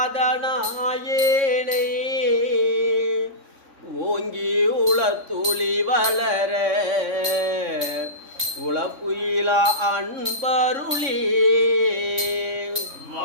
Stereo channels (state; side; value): late; left; 3.6 ms